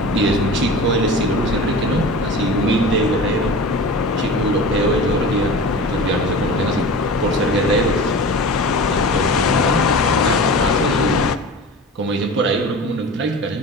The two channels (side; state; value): both; normal; correlation 0.35